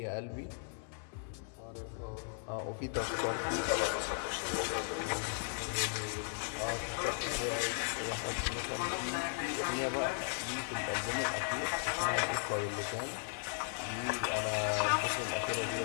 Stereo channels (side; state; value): right; silent; 53 dB below the other